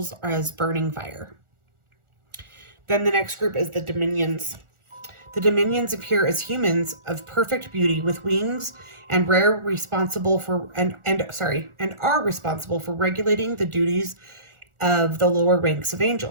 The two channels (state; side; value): late; left; 1.4 ms